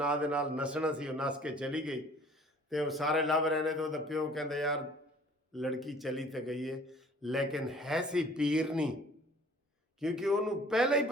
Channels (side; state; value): both; normal; correlation 0.53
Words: ਦੇ ਨਾਲ ਨਸਣਾ ਸੀ, ਉਹ ਨਸ ਕੇ ਚਲੀ ਗਈ ਤੇ ਉਹ ਸਾਰੇ ਲੱਭ ਰਹੇ ਨੇ। ਤੇ ਉਹਦਾ ਪਿਓ ਕਹਿੰਦਾ ਯਾਰ ਲੜਕੀ ਚਲੀ ਤੇ ਗਈ ਹੈ ਲੇਕਿਨ ਹੈ ਸੀ ਪੀਰ ਨਹੀਂ, ਕਿਉਂਕਿ ਉਹਨੂੰ ਪਹਿਲਾਂ ਹੀ